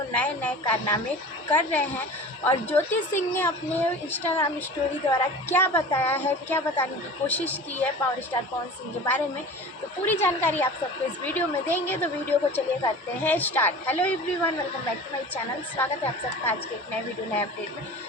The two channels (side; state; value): both; normal; correlation 0.37